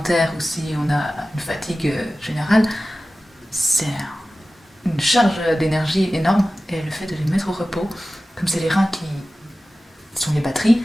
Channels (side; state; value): both; normal; correlation 0.95